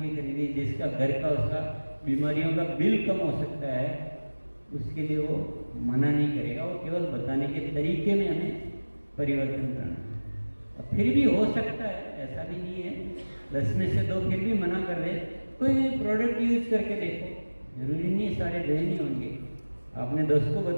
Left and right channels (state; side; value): inverted; both; correlation -1.00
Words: की खरीदी, जिसका घर का उसका बीमारियों का बिल कम हो सकता है, उसके लिए वो मना नहीं करेगा। वो केवल बताने के तरीके में हमें परिवर्तन करना है। और फिर भी हो सकता है, ऐसा भी नहीं है 10 में से 2 फिर भी मना कर दे। कोई भी प्रोडक्ट यूज करके देखो, जरूरी नहीं सारे जॉइन ही होंगे। आपने 10 को